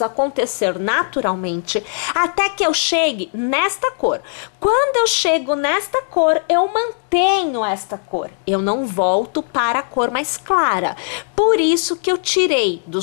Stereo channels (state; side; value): silent; right; digital silence